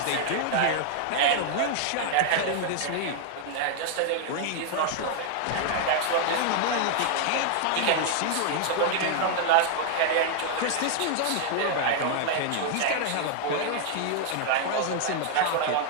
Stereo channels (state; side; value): different; both; correlation 0.00